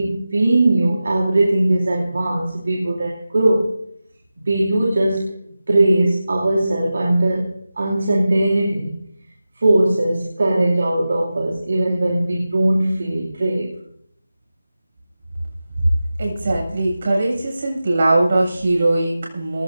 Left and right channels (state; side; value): inverted; both; correlation -0.94